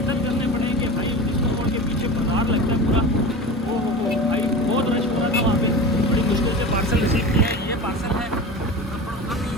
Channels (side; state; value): both; normal; correlation 0.31